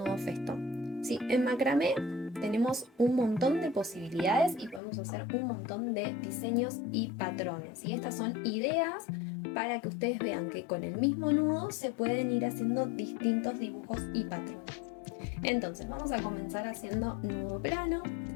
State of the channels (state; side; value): drops out; right; at 4.8 s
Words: festón. Sí, en macramé tenemos un montón de posibilidades y podemos hacer un montón de diseños y patrones. Y estas son ideas para que ustedes vean que con el mismo nudo se pueden ir haciendo distintos dibujos y patrones. Entonces vamos a comenzar haciendo nudo plano.